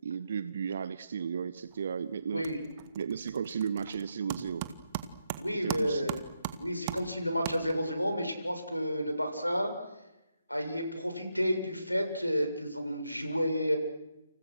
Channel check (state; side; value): inverted; both; correlation -0.82